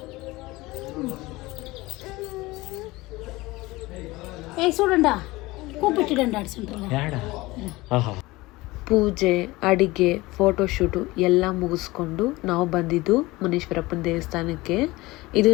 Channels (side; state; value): right; quieter; 20.6 dB